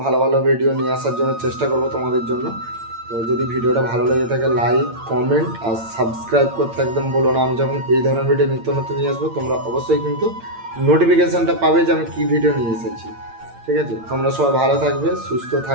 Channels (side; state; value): left; late; 8.8 ms